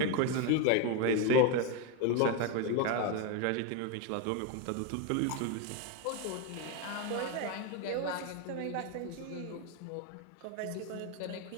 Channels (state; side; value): different; both; correlation 0.02